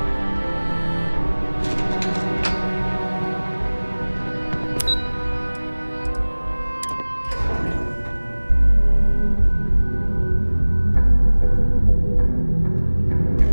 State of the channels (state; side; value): inverted; both; correlation -1.00